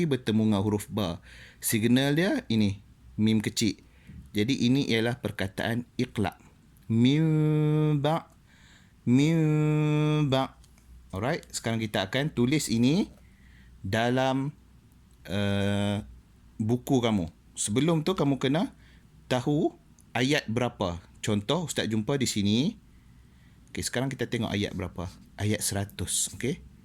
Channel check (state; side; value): identical; both; correlation 1.00